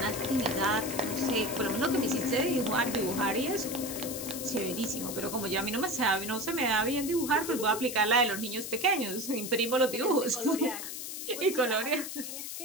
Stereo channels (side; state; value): left; noise; hiss, 7 dB below the sound